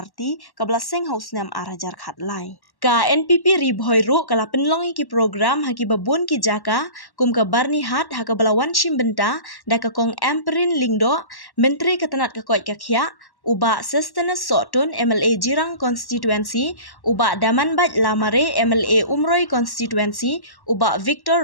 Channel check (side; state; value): right; late; 1.1 ms